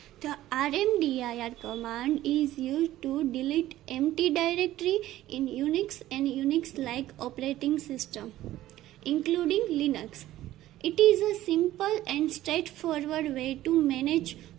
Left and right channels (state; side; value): quieter; left; 14.6 dB